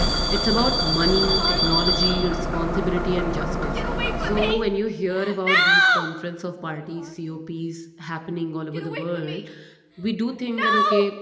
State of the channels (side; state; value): both; identical; correlation 1.00